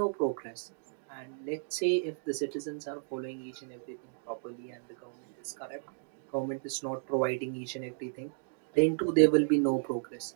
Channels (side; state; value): left; silent; digital silence